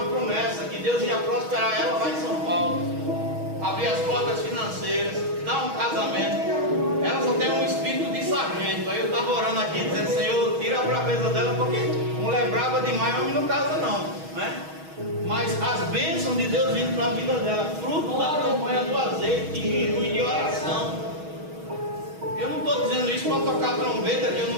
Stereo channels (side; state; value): left; late; 6.3 ms